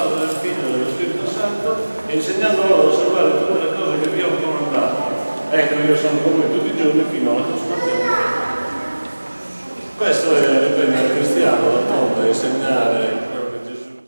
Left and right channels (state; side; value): inverted; both; correlation -1.00